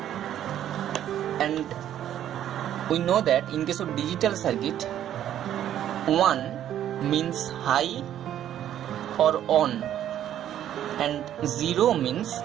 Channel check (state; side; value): quieter; left; 11.1 dB